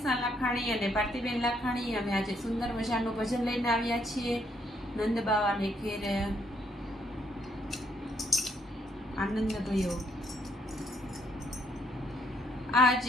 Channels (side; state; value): both; normal; correlation 0.71